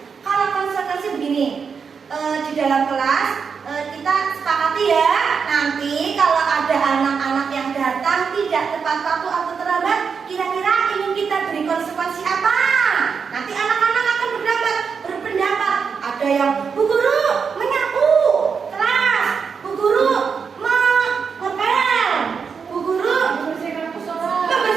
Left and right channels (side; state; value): left; quieter; 6.0 dB